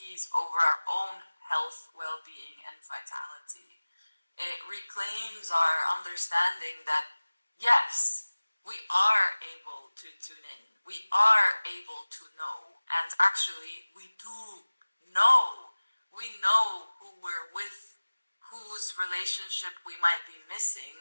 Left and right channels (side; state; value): both; inverted; correlation -1.00